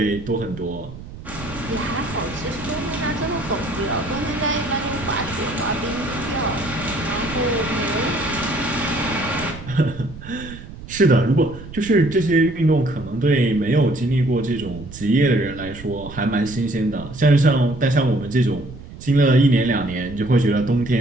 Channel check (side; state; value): right; noise; rumble, 14 dB below the sound